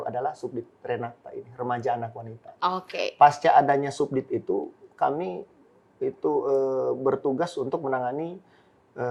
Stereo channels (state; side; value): identical; both; correlation 1.00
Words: adalah Subdit Renata ini, Remaja Anak Wanita. Pasca adanya Subdit itu, kami itu bertugas untuk menangani